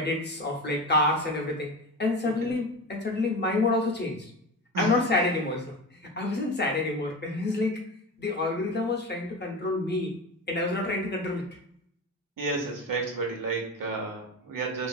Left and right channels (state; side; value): normal; both; correlation 0.26